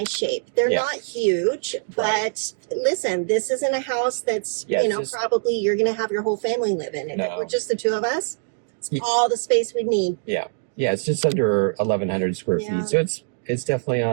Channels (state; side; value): silent; left; digital silence